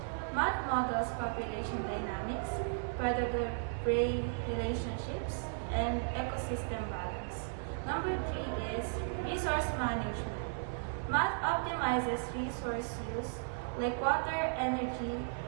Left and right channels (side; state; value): left; silent; 54 dB below the other